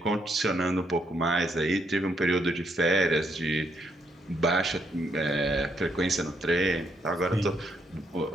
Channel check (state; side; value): normal; both; correlation 0.75